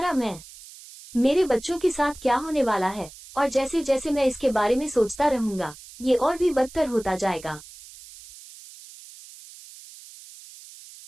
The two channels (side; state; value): right; noise; hiss, 19 dB below the sound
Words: मैं। मेरे बच्चों के साथ क्या होने वाला है? और जैसे जैसे मैं इसके बारे में सोचता रहूंगा, ये और भी बदतर होता जाएगा।